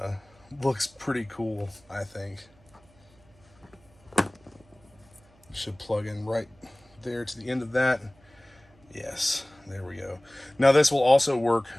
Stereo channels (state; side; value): noise; right; hum, 29 dB below the sound